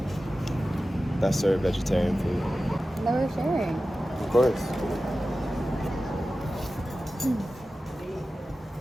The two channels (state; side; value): normal; both; correlation 0.94